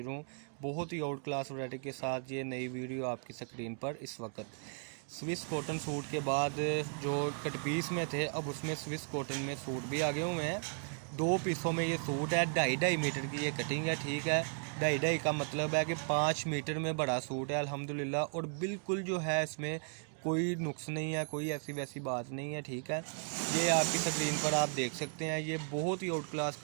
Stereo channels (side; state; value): left; silent; 54 dB below the other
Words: हूँ बहुत ही आउट क्लास वैरायटी के साथ। ये नई वीडियो आपकी स्क्रीन पर इस वक्त स्विस कॉटन सूट के बाद जो कट पीस में थे, अब उसमें स्विस कॉटन में सूट भी आगे हुए हैं। दो पीसों में ये सूट है, 2.5 मीटर की ये कटिंग है। ठीक है, 2.5 का मतलब है कि 5 मीटर में बड़ा सूट है अल्हम्दुलिल्लाह। और बिल्कुल जो है इसमें कोई नुक्स नहीं है, कोई ऐसी वैसी बात नहीं है। ठीक है, ये आपकी स्क्रीन पर आप देख सकते हैं, ये बहुत ही आउट क्लास